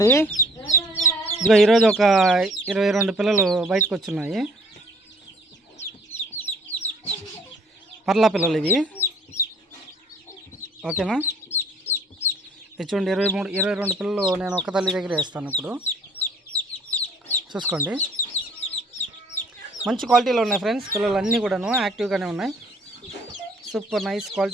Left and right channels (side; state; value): both; normal; correlation 0.57